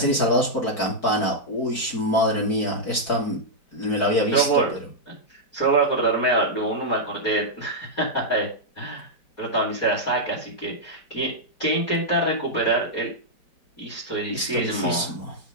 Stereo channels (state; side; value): late; right; 4.5 ms